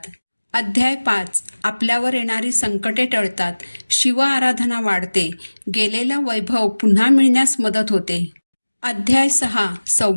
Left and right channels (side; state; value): both; inverted; correlation -1.00